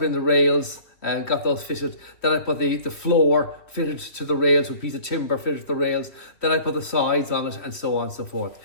in the rails and got those fitted. Then I put the floor fitted to the rails with a piece of timber fitted to the rails. Then I put the sides on it, and so on and so forth.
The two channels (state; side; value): late; right; 2.9 ms